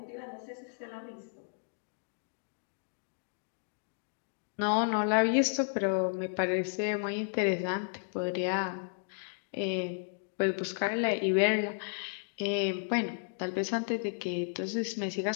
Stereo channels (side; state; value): right; silent; digital silence